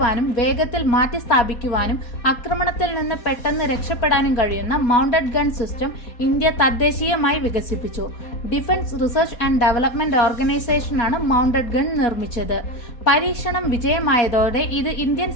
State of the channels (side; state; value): right; late; 4.2 ms